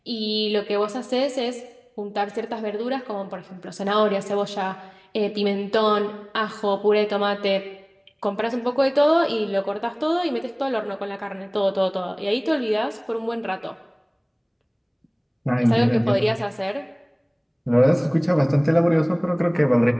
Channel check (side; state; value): both; identical; correlation 1.00